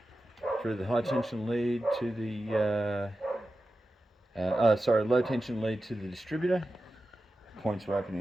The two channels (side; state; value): both; normal; correlation 0.93